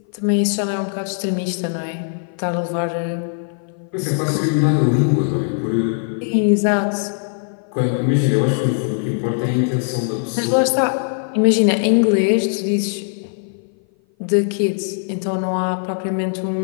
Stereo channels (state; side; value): silent; right; 57 dB below the other